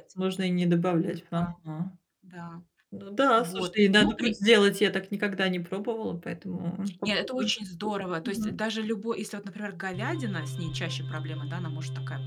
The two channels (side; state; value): both; identical; correlation 1.00